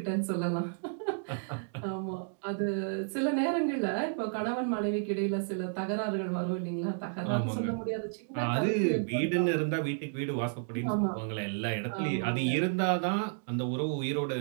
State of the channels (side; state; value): left; silent; digital silence